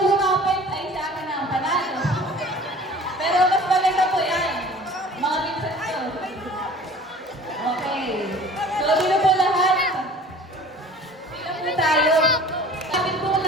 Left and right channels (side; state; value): both; normal; correlation 0.46